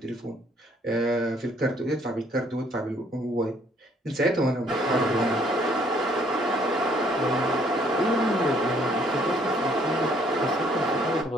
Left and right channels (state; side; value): normal; both; correlation 0.64